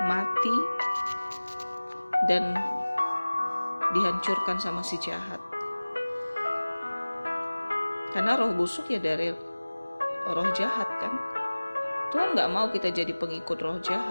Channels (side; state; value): both; inverted; correlation -1.00